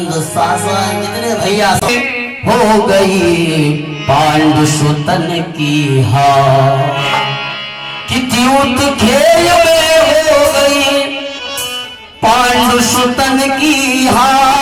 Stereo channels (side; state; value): both; identical; correlation 1.00